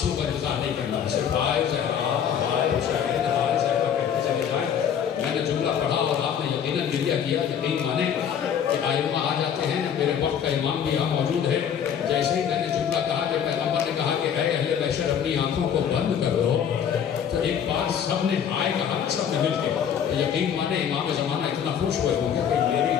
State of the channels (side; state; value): right; quieter; 8.4 dB